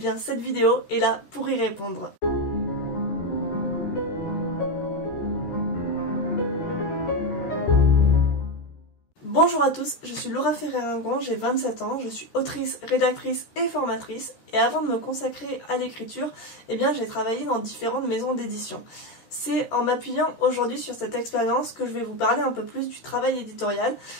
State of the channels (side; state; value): right; late; 13 ms